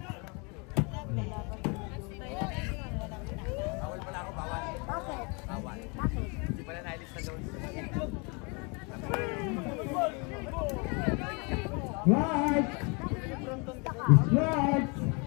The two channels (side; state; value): right; quieter; 31.8 dB